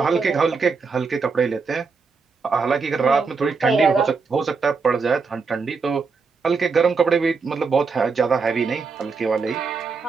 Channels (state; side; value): quieter; left; 4.8 dB